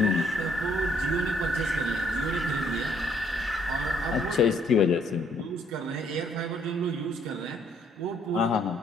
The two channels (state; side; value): normal; both; correlation 0.67